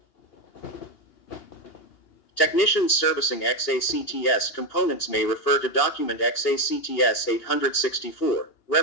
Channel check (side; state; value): right; late; 2.8 ms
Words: Technicians servicing XACTS components may refer to document XACTS 864,